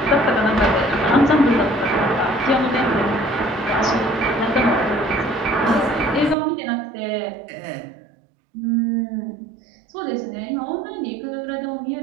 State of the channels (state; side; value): drops out; left; at 6.4 s